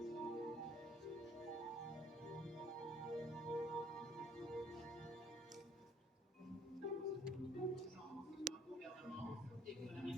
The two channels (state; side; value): normal; both; correlation 0.60